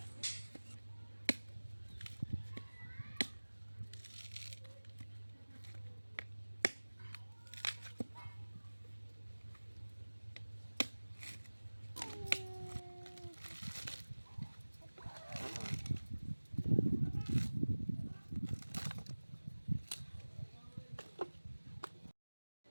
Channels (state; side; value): inverted; both; correlation -1.00